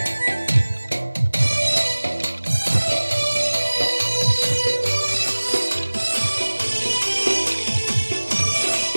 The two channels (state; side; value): inverted; both; correlation -1.00